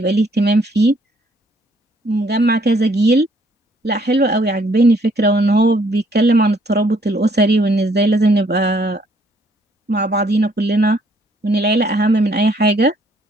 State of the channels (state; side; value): normal; both; correlation 0.65